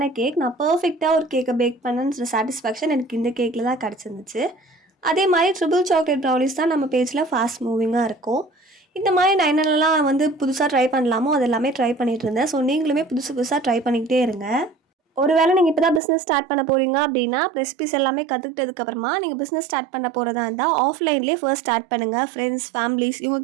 கேக். நான் பர்ஃபெக்டாக ஒரு கேக்கை பேக் பண்ணன்ற சாட்டிஸ்ஃபேக்ஷன் எனக்கு இந்த கேக்கில் தான் கிடச்சிருந்துச்சு. அதே மாதிரி ட்ரிபிள் சாக்லேட் ப்ரௌனிஸ் தான் நம்ம பேஜில் ஃபாஸ்ட் மூவிங்காக இருக்கும். இந்த மாதிரி நான் என்னென்னலாம் வந்து புதுசாக ட்ரை பண்ணலாமோ அது எல்லாமே ட்ரை பண்ணிகிட்டு இருந்தேன். ஸோ நீங்களுமே புதுசாக ட்ரை பண்ணிக்கிட்டே இருங்க. ஒருவேளை நீங்கள் இப்போ தான் பிஸ்னஸ் ஸ்டார்ட் பண்ண போகிறீங்க அப்படின்னா ரெசிபிஸ் எல்லாமே கற்றுக்கிட்டதுக்கப்புறமா நீங்கள் பிஸ்னஸ் ஸ்டார்ட் பண்ண போகிறதா இருந்தால் ஆஃப்லைன்லேயே ஃபர்ஸ்ட் ஸ்டார்ட் பண்ணுங்கள். ஃப்ரெண்ட்ஸ், ஃபேமிலிஸ்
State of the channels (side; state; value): left; drops out; at 16.0 s